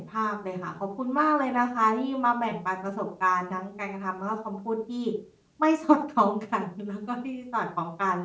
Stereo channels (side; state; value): both; identical; correlation 1.00